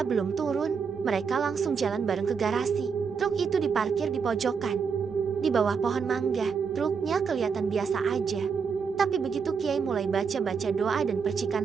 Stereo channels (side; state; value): left; quieter; 5.9 dB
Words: belum turun. Mereka langsung jalan bareng ke garasi. Truk itu diparkir di pojokan, di bawah pohon mangga. Truknya kelihatan biasa aja. Tapi begitu Kiai mulai baca-baca doa dan percikan